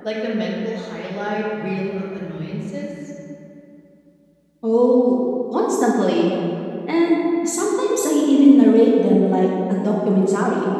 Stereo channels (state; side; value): identical; both; correlation 1.00